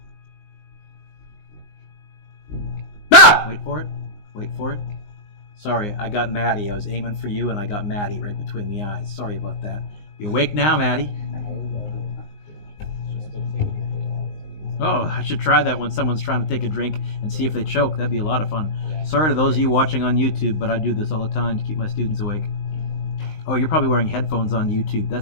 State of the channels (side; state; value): right; late; 19 ms